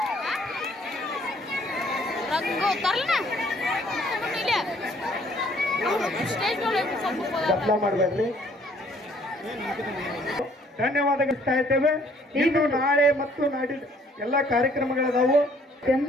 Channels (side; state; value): both; normal; correlation 0.61